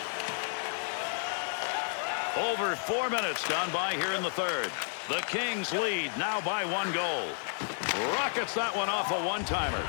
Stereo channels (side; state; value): right; silent; 55 dB below the other